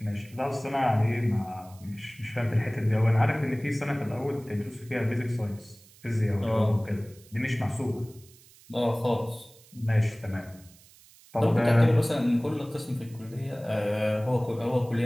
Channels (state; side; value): noise; right; hiss, 25 dB below the sound